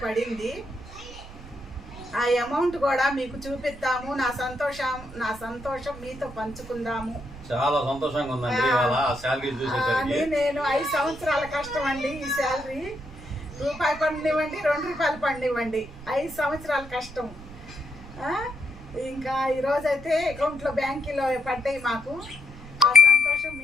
పడింది. ఆ అమౌంట్ కూడా మీకు చూపిద్దాము. నా సంతోషం మీతో పంచుకుందాము. చాలా సంతోషంగా ఉందండి. నేను 5 సంవత్సరాల కష్టం అండి. ఈ శాలరీ రూపాయి పండివ్వండి, 2 రూపాయలు పండివ్వండి, 5 సంవత్సరాల కష్టం. ఇంకా ఈరోజైతే అకౌంట్లో బ్యాంకులో పడ్డాయి మాకు. ఆ సంతోషం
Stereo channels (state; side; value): noise; right; rumble, 16 dB below the sound